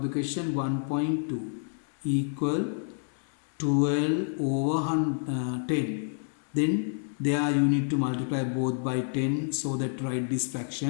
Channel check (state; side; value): silent; right; digital silence